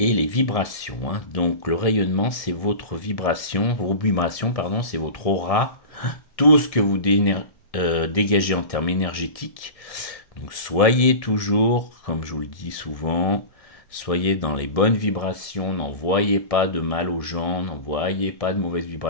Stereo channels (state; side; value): late; right; 1.7 ms